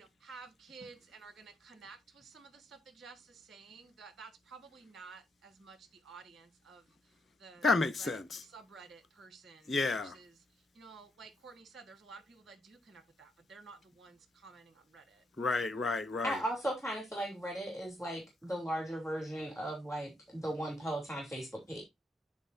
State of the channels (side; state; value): both; normal; correlation 0.77